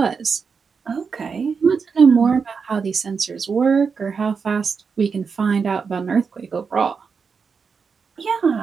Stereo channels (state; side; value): quieter; left; 5.6 dB